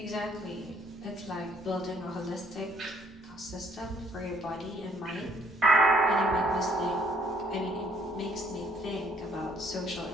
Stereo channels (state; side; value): normal; both; correlation 0.65